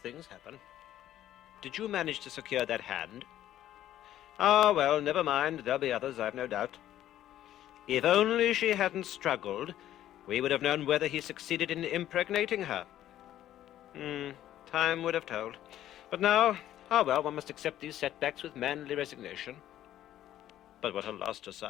happen. Did you manage to secure that hand? Ah, well, never mind. There'll be others, I've no doubt. If only she hadn't struggled, we would have known whether he succeeded in impregnating her. Time would have told. But now, well, one must accept these setbacks with manly resignation. But what a loss to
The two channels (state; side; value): quieter; right; 12.4 dB